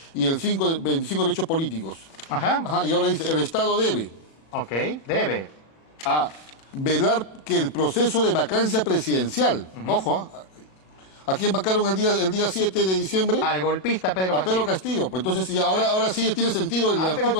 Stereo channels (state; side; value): late; right; 37 ms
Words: Y el 5, 25, derechos políticos. Y ahora dice, el Estado debe. Debe. Velar que el proceso de vacancia presidencial, ojo, ¿A quién vacaron el día 7 de diciembre? Al golpista Pedro A Pedro Castillo. Pues entonces, sí, ahora sí tiene sentido el